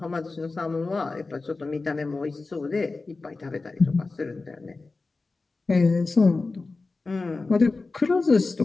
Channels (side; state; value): right; quieter; 3.7 dB